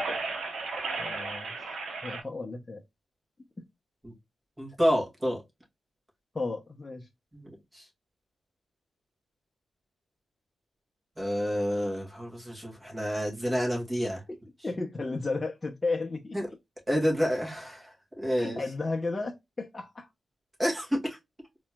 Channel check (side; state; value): both; normal; correlation 0.95